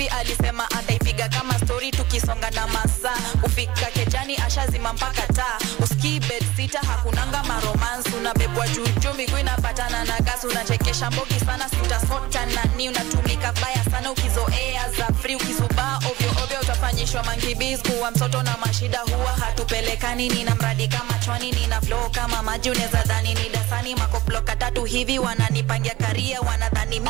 alisema ataipiga kama story tukisonga na masaa. Ufika kejani ashazima mpaka taa. Uski bed sita hakunanga maromance. Unabebwa juju miguu inapatana na gas. Unachekesha mbogi sana sitasota nani. Unatumika baya sana ukizoea za free. Ukizubaa ovyo ovyo utafanyishwa mankibiz. Kuwa mtoto na mashida huwa hatupelekani. Nina mradi kama chwani, nina flow kama maji. Uneza dhani ni dasani makoploka tatu hivi. Wananipangia karia, wanadhani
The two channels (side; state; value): left; quieter; 18.3 dB